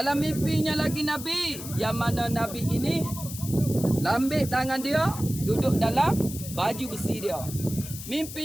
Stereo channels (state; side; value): noise; left; hiss, 11 dB below the sound